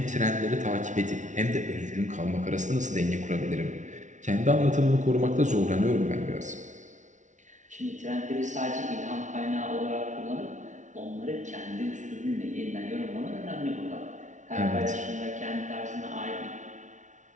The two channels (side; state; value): left; late; 0.36 ms